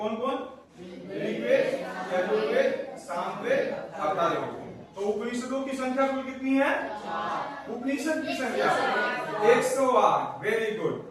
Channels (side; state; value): both; identical; correlation 1.00